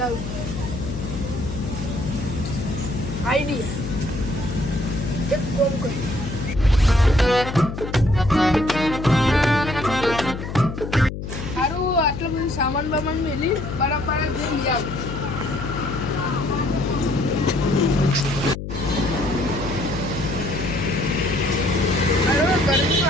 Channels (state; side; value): noise; left; hum, 7 dB below the sound